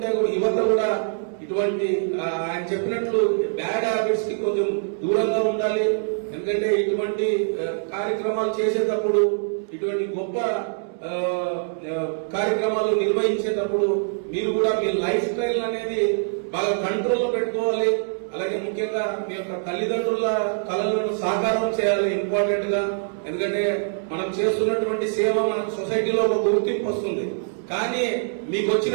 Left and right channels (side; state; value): left; silent; digital silence